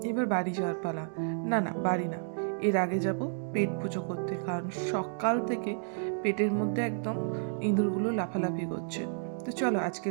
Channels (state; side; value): silent; left; digital silence